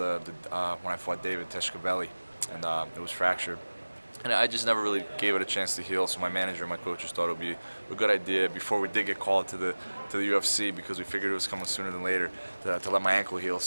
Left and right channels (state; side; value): inverted; both; correlation -1.00